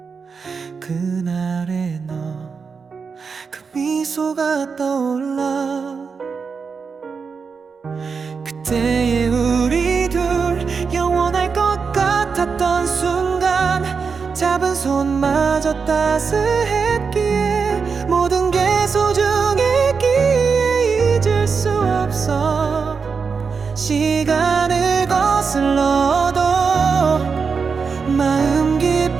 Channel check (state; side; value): quieter; left; 5.4 dB